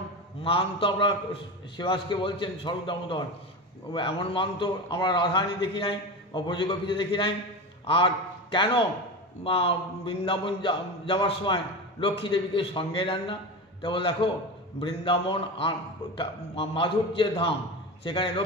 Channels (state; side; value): normal; both; correlation 0.24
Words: মান তো আমরা শিবাসকে বলছেন স্বরূপ দামোদর, এমন মান তো আমরা রাধারানী দেখি নাই বা ব্রজগোপীতে দেখি নাই। আর কেন বৃন্দাবন যাওয়ার সময় লক্ষ্মী দেবীকে সঙ্গে নেন না? কেবল দেখো বৃন্দাবন মাধুর্যের ধাম, সেখানে